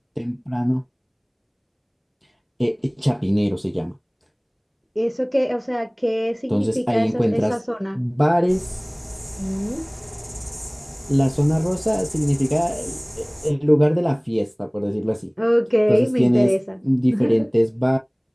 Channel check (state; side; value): identical; both; correlation 1.00